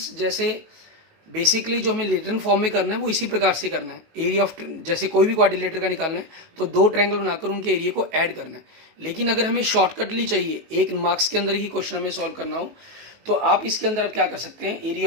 जैसे बेसिकली जो हमें रिटर्न फॉर्म में करना है वो इसी प्रकार से करना है, एरिया ऑफ जैसे कोई भी क्वाड्रिलेटर का निकालना है तो दो ट्रायंगल बनाकर उनके एरिया को ऐड करना है। लेकिन अगर हमें शॉर्टकटली चाहिए, एक मार्क्स के अंदर ही क्वेश्चन हमें सॉल्व करना हो, तो आप इसके अंदर आप क्या कर सकते हैं,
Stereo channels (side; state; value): left; late; 19 ms